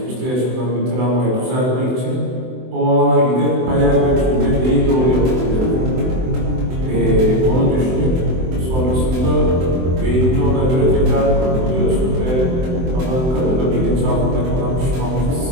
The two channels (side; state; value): left; late; 23 ms